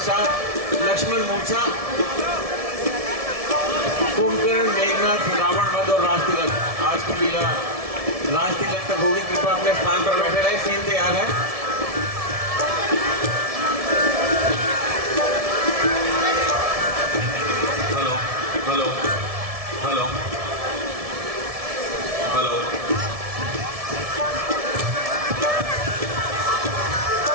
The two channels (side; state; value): left; late; 1.7 ms